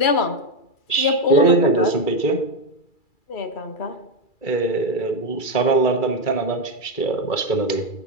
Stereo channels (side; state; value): right; late; 2.3 ms